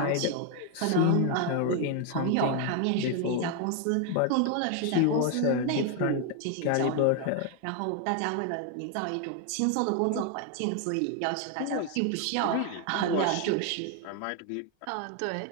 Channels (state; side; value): different; both; correlation 0.01